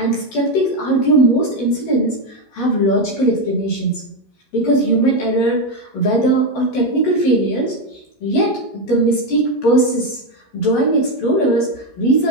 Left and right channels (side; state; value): right; late; 15 ms